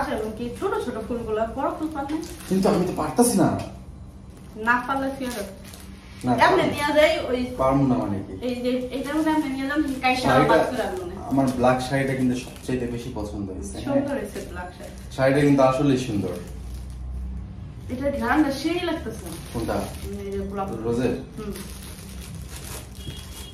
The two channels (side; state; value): both; identical; correlation 1.00